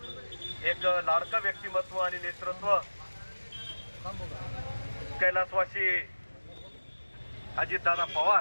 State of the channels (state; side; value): inverted; both; correlation -1.00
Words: एक लाडकं व्यक्तिमत्व आणि नेतृत्व कैलासवासी अजितदादा